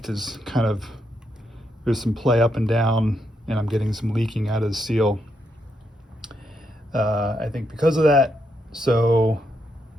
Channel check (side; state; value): both; normal; correlation 0.80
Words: is kind of, there's some play up and down, and I'm getting some leaking out of the seal. I think because of that, so